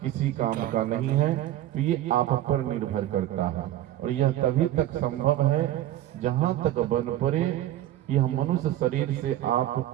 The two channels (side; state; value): left; quieter; 13.5 dB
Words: किसी काम का नहीं है। तो ये आप पर निर्भर करता है, और यह तभी तक संभव है जहां तक बन पड़े यह मनुष्य शरीर से आप